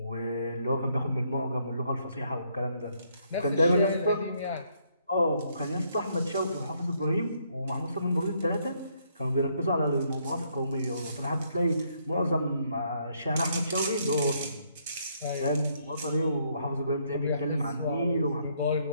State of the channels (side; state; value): both; inverted; correlation -0.71